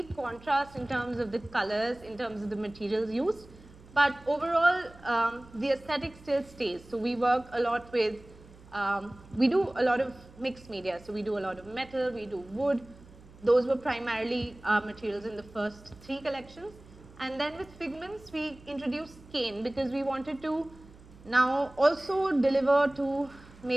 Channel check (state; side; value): noise; right; hum, 22 dB below the sound